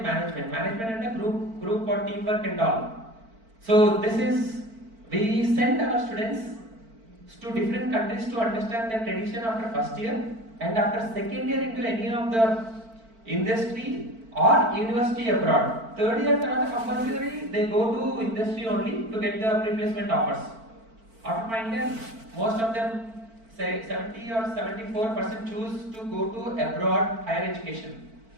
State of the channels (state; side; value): late; left; 4.5 ms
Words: management. Management and a group for teamwork and all. So this is, we send our students to different countries to understand their tradition after first year, and after second year into any of the industry or university abroad. Third year compulsory they go to industry only to get the replacement offers. After final year, most of them say 70 or 74% choose to go to abroad higher education.